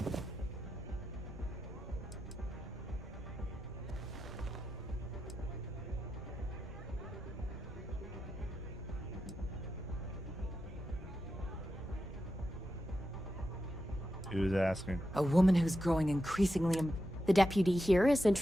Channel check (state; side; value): normal; both; correlation 0.88